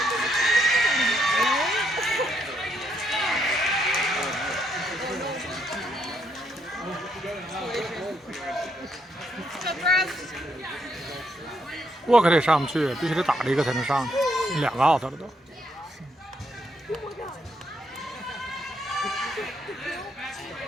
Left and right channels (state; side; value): normal; both; correlation 0.75